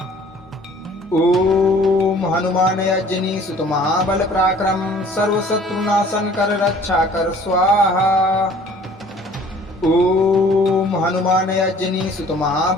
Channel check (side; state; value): both; normal; correlation 0.52